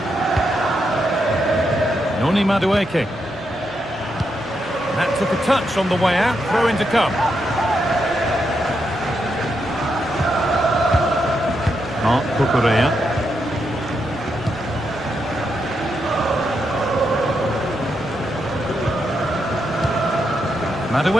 Noni Madueke. That took a touch on the way out. Throw in to come. Mark Cucurella.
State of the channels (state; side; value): normal; both; correlation 0.82